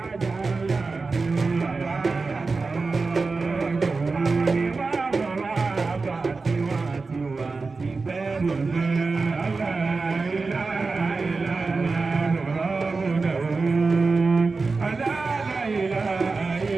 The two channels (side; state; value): left; quieter; 4.1 dB